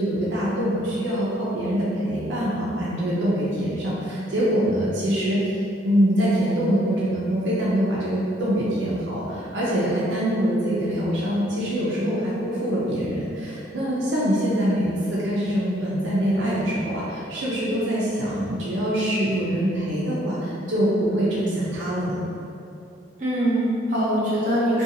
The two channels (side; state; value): both; normal; correlation 0.66